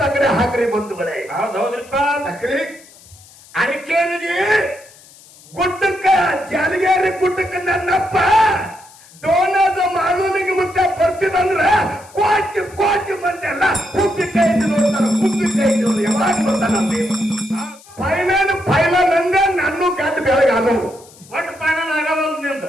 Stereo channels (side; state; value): left; noise; hiss, 24 dB below the sound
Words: ತಗಡೆ ಹಾಕ್ರಿ ಬಂಧುಗಳೇ. ಹೌದ್ರಿಪ್ಪ. ಹಾಕ್ರಿ. ಅರಿಕೇರಿಗೆ ಗುಡ್ಡಕ್ಕ ಜಾಲಗೇರಿ ಗುಡ್ಡಕ್ಕ ನನ್ನಪ್ಪ ಡೋನದ ಮಾಲೂನಿಗೆ ಮುಟ್ಟ ಬರ್ತಿದಂದ್ರ ಕೋಟಿ ಕೋಟಿ ಮಂದಿ ಎಲ್ಲ ಕುಪ್ಪಿ ಕೈ ನೋಡ್ತಾರ. ಕುಪ್ಪಿ ಕೈ ನೋಡಿ ಯಾವಾಗ ನೋಡ್ತಾನ ಫೈನಲ್ ಅಂದ್ರೆ ನನ್ನ ಗಂಟು ಬೆಳಗ್ಗೆ ಆದವು ಒಟ್ಟು ಫೈನಲ್ ಆಗಲ್ಲ ನಿಂದ